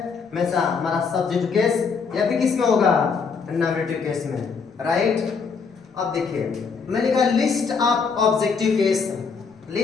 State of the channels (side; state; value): right; quieter; 5.4 dB